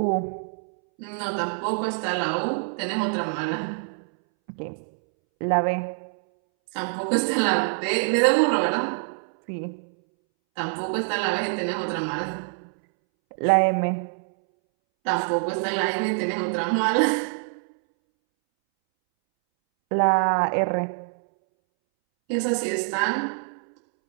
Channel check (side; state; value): left; silent; 62 dB below the other